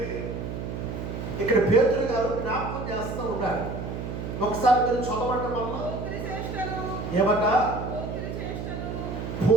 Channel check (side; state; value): right; noise; hum, 6 dB below the sound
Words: ఇక్కడ పేతురు గారు జ్ఞాపకం చేస్తూ ఉన్నాడు. ఒకసారి మీరు చదవండి. వల్ల ఏమట